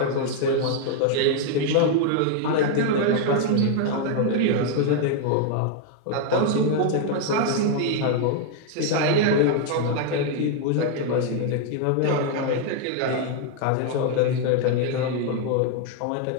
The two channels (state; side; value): different; both; correlation 0.00